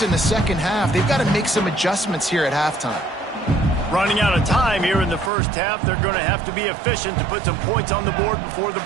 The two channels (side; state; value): left; drops out; at 5.3 s